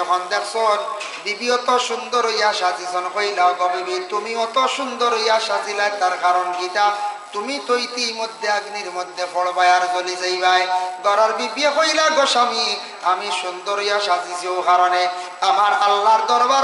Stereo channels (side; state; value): both; identical; correlation 1.00